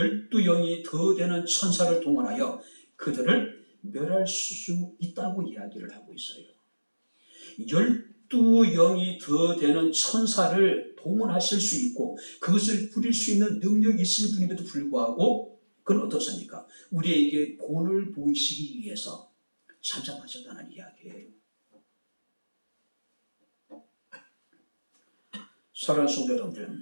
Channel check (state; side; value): inverted; both; correlation -1.00